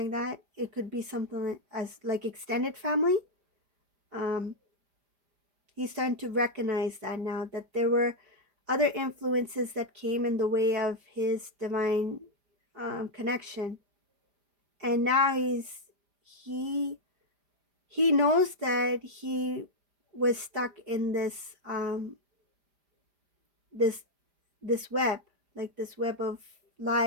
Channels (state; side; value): late; left; 5.0 ms